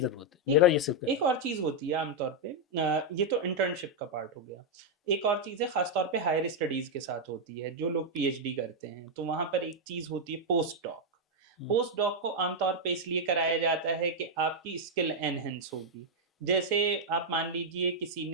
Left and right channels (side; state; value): both; normal; correlation -0.01